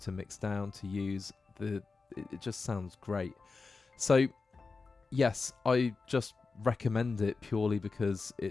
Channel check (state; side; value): quieter; right; 4.2 dB